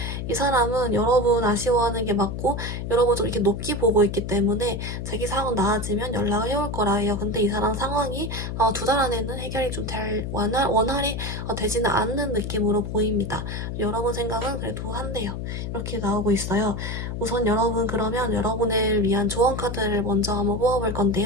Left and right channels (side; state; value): left; noise; hum, 5 dB below the sound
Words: 이 사람은 여러분 아쉬워하는 게 맞고, 여러분 좀 이렇게 높게 보고 있기 때문에 자기 상황 나아지면 연락을 해올 거라 해요. 근데 이 사람 상황이 2달 안에는 해결이 좀 원활히 되지는 않는 느낌으로 보입니다. 여러분 생각은 그래도 한대요. 이렇게 나오고 있어요. 우선 여러분 그러면 여러분을 위한 조언 카드를 먼저 한번 뽑아볼